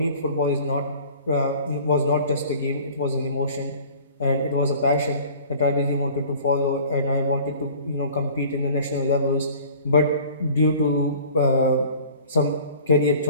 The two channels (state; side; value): inverted; both; correlation -0.47